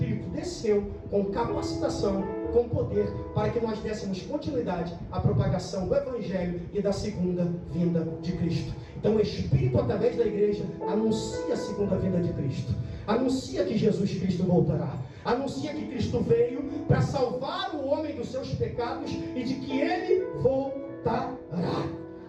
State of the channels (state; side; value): identical; both; correlation 1.00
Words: desceu com capacitação, com poder, para que nós dessemos continuidade à propagação do Evangelho e da segunda vinda de Cristo. Então o Espírito, através da igreja, anuncia a segunda vinda de Cristo, anuncia que Jesus Cristo voltará, anuncia que Cristo veio para salvar o homem dos seus pecados e de que Ele voltará.